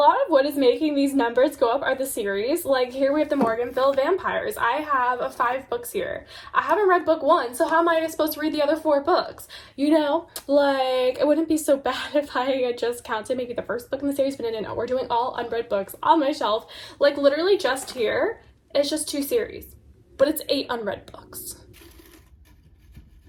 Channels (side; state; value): both; identical; correlation 1.00